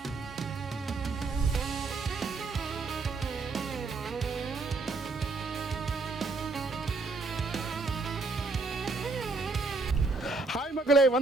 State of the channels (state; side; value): quieter; left; 3.7 dB